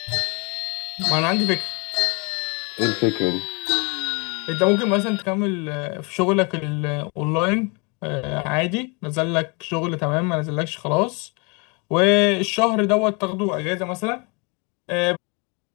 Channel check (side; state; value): right; quieter; 31.5 dB